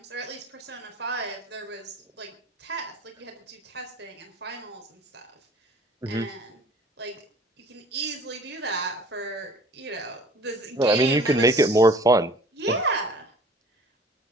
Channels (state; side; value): normal; both; correlation 0.48